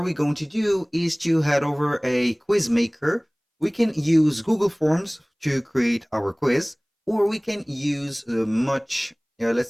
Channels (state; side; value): identical; both; correlation 1.00